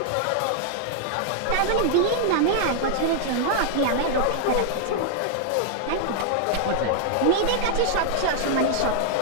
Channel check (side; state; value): both; different; correlation -0.01